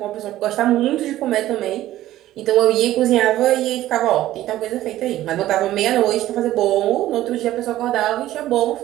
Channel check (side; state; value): left; quieter; 14.3 dB